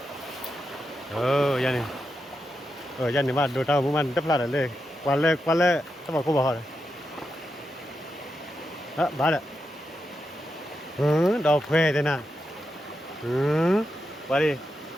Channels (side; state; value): both; normal; correlation 0.87